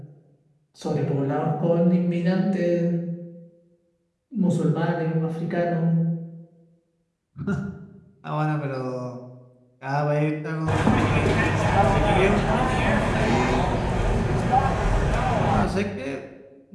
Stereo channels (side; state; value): both; identical; correlation 1.00